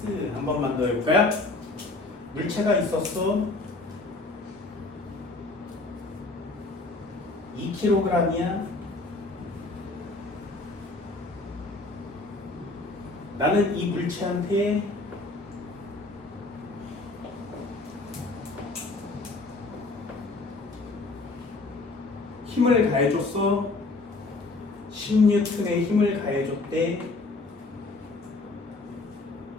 한 번만 더 해볼까요? 물체가 있었어. 2kg이야. 나는 이 물체한테 힘을 가해줬어. 10N의 힘을 가해줬대.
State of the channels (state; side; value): quieter; right; 3.3 dB